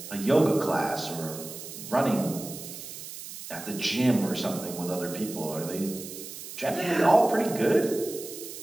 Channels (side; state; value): right; noise; hiss, 11 dB below the sound